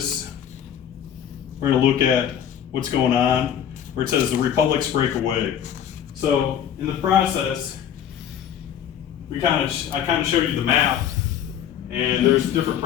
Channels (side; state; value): right; quieter; 9.6 dB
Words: We're going to look at what's going on where it says the republics break away. So in the process, I kind of showed you the map, and there's different